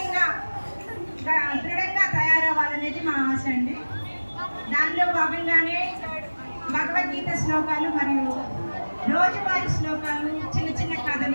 దృఢంగా తయారవ్వాలనేది మా ఆశ అండి. దానిలో భాగంగానే భగవద్గీత శ్లోకాలు మరియు రోజువారీ శ్లోకాలు, చిన్న చిన్న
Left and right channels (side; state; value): both; inverted; correlation -1.00